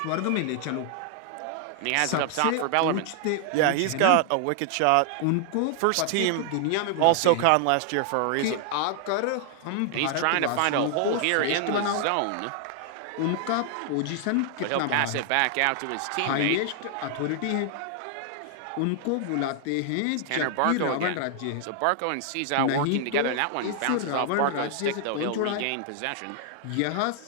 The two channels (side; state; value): both; different; correlation 0.00